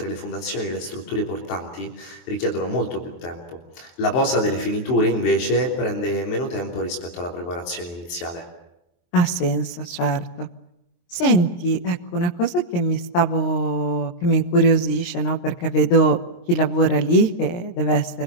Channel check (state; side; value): late; right; 23 ms